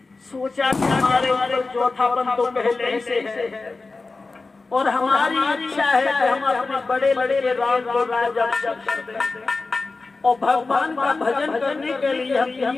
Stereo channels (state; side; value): quieter; right; 3.8 dB